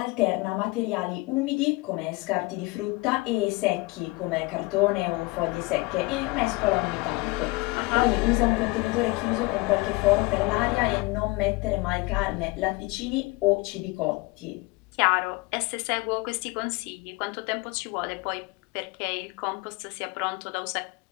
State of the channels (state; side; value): quieter; right; 24.1 dB